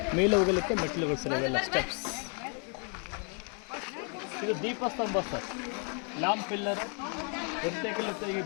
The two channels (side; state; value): right; quieter; 39.8 dB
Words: ಮೇಲೆ ಹೋಗಲಿಕ್ಕೆ ಮೆಟ್ಟಿಲುಗಳು ಸರ್. ಇವೆಲ್ಲ ಸ್ಟೆಪ್ಸ್. ಇದು ದೀಪಸ್ತಂಭ ಸರ್, ಲ್ಯಾಂಪ್ ಪಿಲ್ಲರ್. ಈಗ